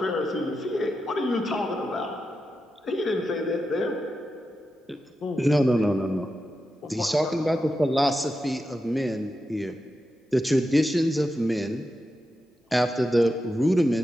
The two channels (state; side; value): normal; both; correlation 0.89